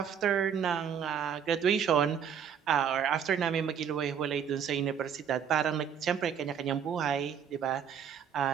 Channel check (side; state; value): left; quieter; 8.0 dB